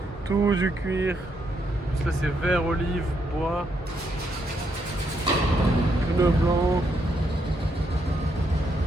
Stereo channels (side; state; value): both; normal; correlation 0.77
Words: Tout du cuir. Là, c'est vert, olive, bois. Pneus blancs.